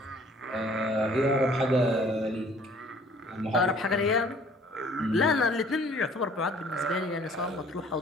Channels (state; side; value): normal; both; correlation 0.55